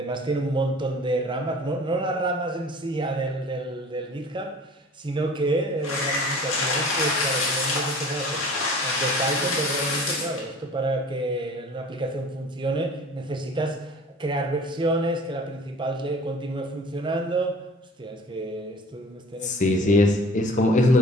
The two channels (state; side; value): normal; both; correlation 0.45